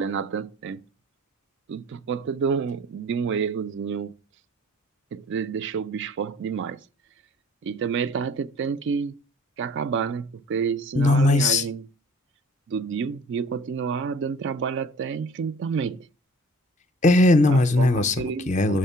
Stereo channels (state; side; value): normal; both; correlation 0.50